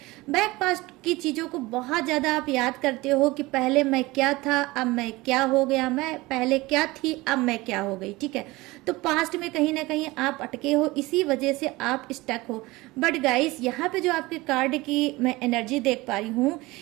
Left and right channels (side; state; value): left; quieter; 21.1 dB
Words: बैक पास्ट की चीज़ों को बहुत ज़्यादा आप याद करते हो कि पहले मैं क्या था, अब मैं क्या हो गया, मैं पहले क्या थी, अब मैं क्या हो गई। ठीक है, तो पास्ट में कहीं ना कहीं आप अटके हो, इसी वजह से आप स्टक हो। बट गाइस, यहाँ पे जो आपके कार्ड की मैं एनर्जी देख पा रही हूँ